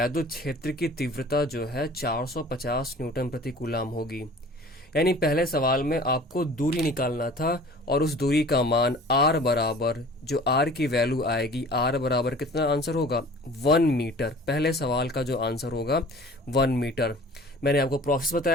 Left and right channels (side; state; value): both; normal; correlation 0.46